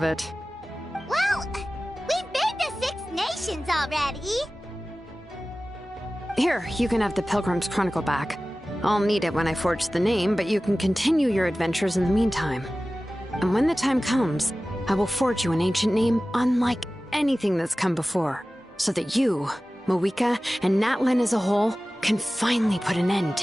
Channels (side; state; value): both; normal; correlation 0.96